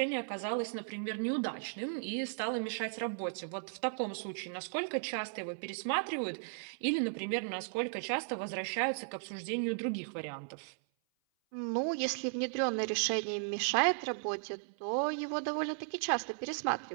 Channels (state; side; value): silent; left; 54 dB below the other